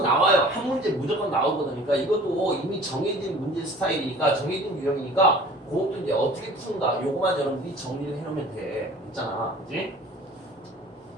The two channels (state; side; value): normal; both; correlation 0.46